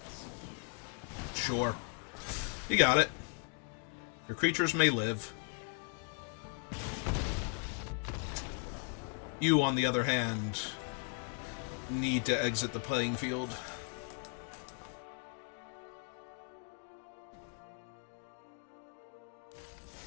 Sure. You got it. Your creatures may live. You, on the other hand, need to exit the playing field.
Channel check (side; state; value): right; quieter; 34.9 dB